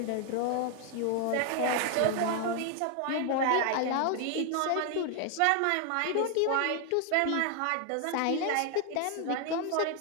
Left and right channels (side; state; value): both; different; correlation 0.01